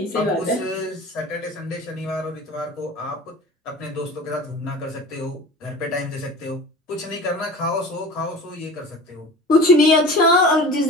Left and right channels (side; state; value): both; normal; correlation 0.38